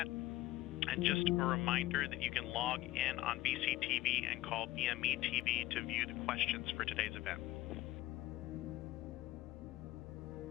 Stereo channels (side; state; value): right; quieter; 16.7 dB